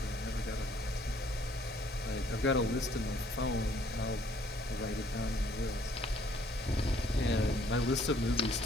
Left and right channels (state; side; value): normal; both; correlation 0.62